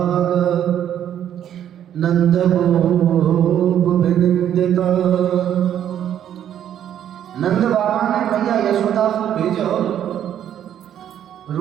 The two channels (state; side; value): quieter; left; 10.2 dB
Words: नंद गोविंदिता। नंद बाबा ने मैया यशोदा को भेजो